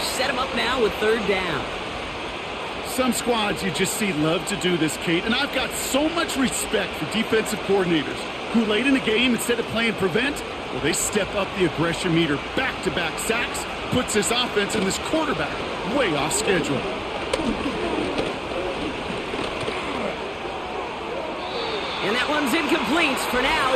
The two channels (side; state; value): both; identical; correlation 1.00